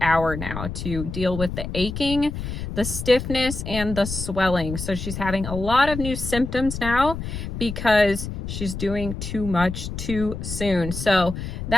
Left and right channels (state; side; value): noise; left; rumble, 6 dB below the sound